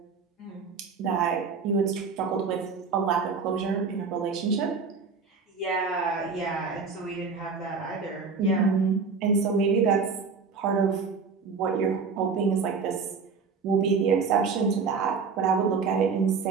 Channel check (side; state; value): left; quieter; 5.2 dB